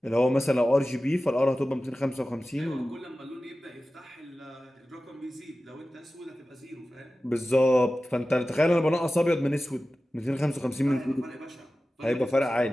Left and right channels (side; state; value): both; normal; correlation 0.95